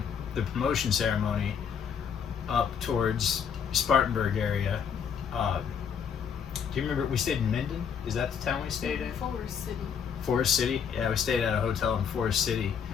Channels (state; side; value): quieter; right; 7.3 dB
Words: the promotion ceremony up towards Spartanburg area. Do you remember we stayed in Minden? Is that the town we stayed in? Forest City. Forest City? Yeah, we stayed at a hotel in Forest City.